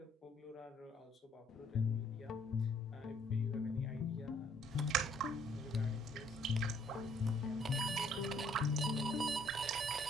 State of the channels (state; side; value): normal; both; correlation 0.64